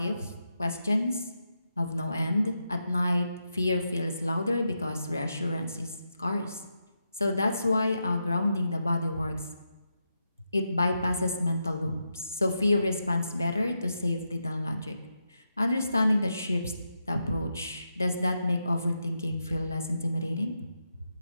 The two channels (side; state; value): both; inverted; correlation -0.85